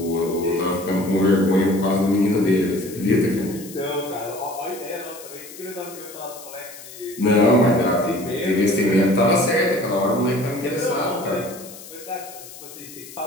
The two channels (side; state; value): left; noise; hiss, 16 dB below the sound